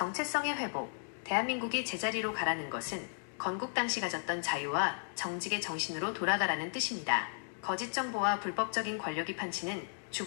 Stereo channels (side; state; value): right; silent; digital silence